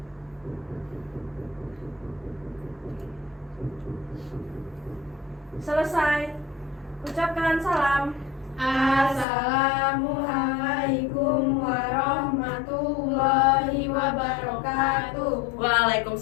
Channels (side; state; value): right; drops out; at 9.2 s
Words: Selesai. Ucapkan salam. Assalamualaikum warahmatullahi wabarakatuh.